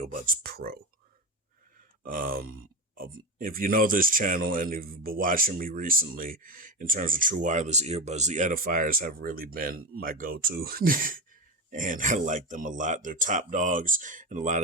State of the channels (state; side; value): normal; both; correlation 0.19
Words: Pro. If you know this channel and if you've been watching me recently in terms of true wireless earbuds, the Edifiers have really been my go-to. And I like them a lot. They're top dogs in a lot